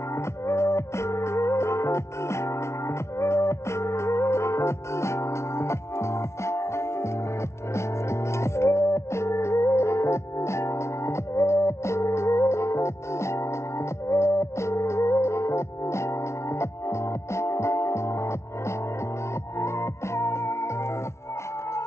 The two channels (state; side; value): late; right; 0.13 ms